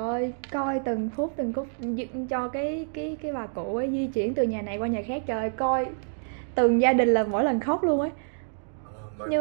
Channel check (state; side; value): silent; left; digital silence